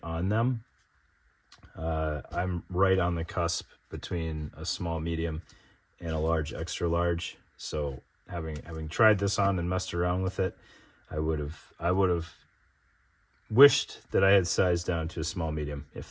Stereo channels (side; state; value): both; identical; correlation 1.00